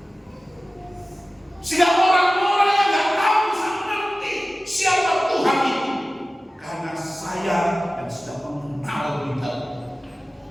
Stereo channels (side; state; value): both; normal; correlation 0.96